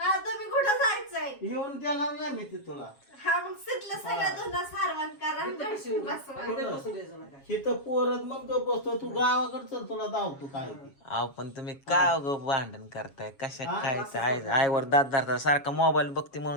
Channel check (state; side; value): late; right; 7.3 ms